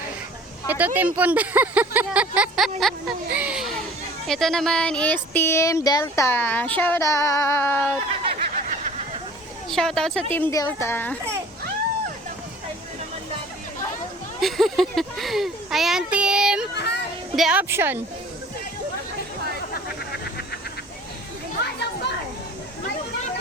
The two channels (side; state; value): both; normal; correlation 0.47